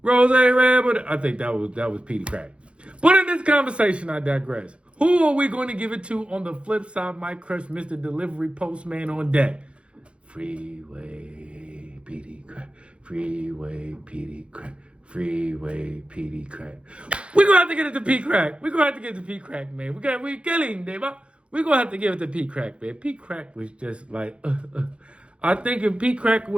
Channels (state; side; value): late; left; 0.059 ms